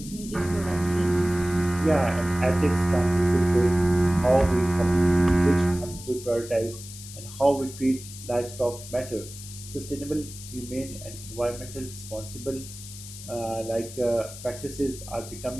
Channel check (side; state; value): left; noise; hiss, 14 dB below the sound